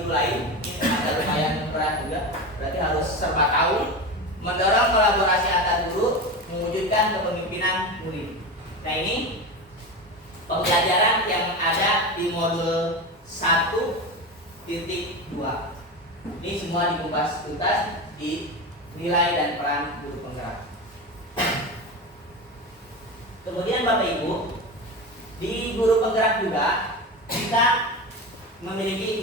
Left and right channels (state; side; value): normal; both; correlation 0.23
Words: lain. Ini ada lumayan berat juga, berarti harus serba tahu, mendorong kolaborasi antar guru, mewujudkan kepemimpinan murid. Nah, ini pembelajaran yang ada di modul 1.2. Ini semua dikupas tuntas di nilai dan peran guru penggerak. Kemudian Bapak Ibu, di guru penggerak juga kita memiliki